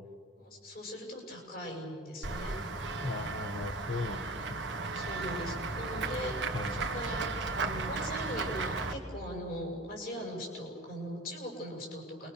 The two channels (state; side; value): normal; both; correlation 0.36